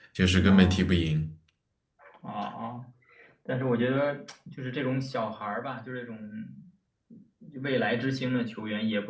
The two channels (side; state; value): both; identical; correlation 1.00